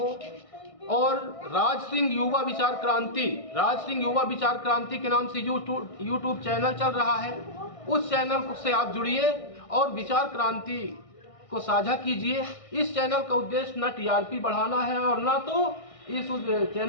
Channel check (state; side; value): late; right; 1.6 ms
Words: और राज सिंह युवा विचार क्रांति के नाम से यूट्यूब चैनल चल रहा है, उस चैनल से आप जुड़िए और विचार क्रांति को साझा कीजिए। इस चैनल का उद्देश्य न टीआरपी बढ़ाना है और न तो इस